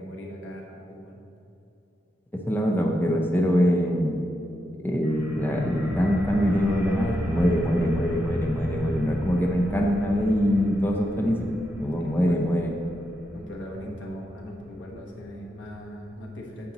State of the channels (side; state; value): both; normal; correlation 0.85